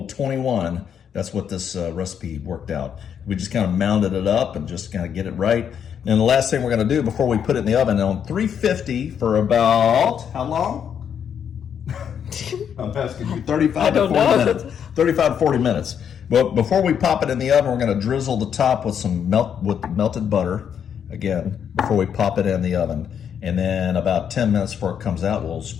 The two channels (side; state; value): right; quieter; 8.2 dB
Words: 21. That's what this recipe worked out. We just kind of mounded it up and just kind of get it right. And the last thing we're going to do before we put it in the oven on 350 for about, how long? I'm asking you, 35 to 40 minutes. 35 to 40 minutes. But before we pop it in the oven, we're going to drizzle the top with melted butter, again, before we pop it in the oven. And then about 10 minutes before it comes out, we'll